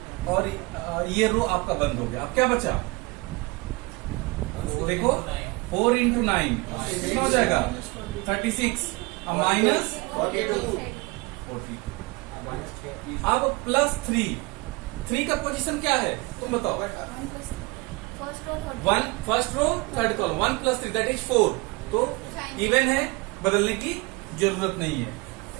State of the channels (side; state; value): left; quieter; 24.9 dB